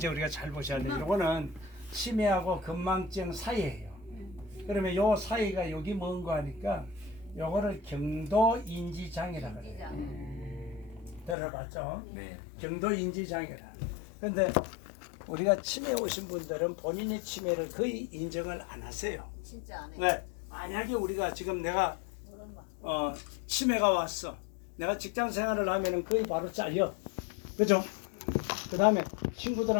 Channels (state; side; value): drops out; right; at 11.4 s